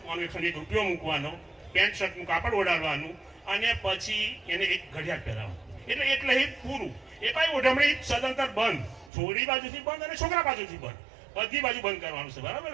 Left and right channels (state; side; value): drops out; left; at 9.1 s